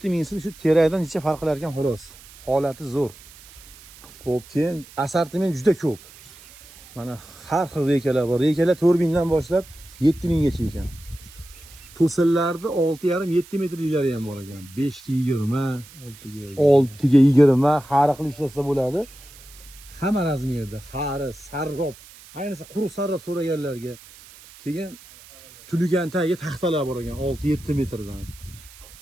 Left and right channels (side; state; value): right; noise; hiss, 21 dB below the sound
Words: so'm, shu terakdan necha farq qilar ekan xolos. Holati zo'r. Xo'p, keyin assortiment juda ko'p. Mana har xil rekalar bor. Rekalar 4000 dan boshlab 7000 gacha ekan. To'sinlarni 6,5-7 metrliklari ham bor ekan. 5 ga 20, 6 ga 20 har xil ishlasa bo'ladi. Hamma razmerda, xari, sarrob, ayniqsa quruq sarrob so'raganlarga. Keyin tuligan tagiga taxtalar bor ekan 6-7 metrdan.